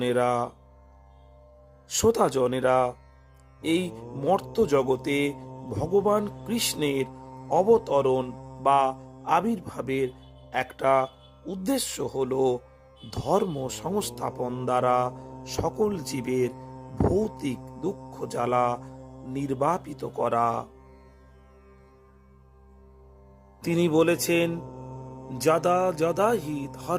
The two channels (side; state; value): both; identical; correlation 1.00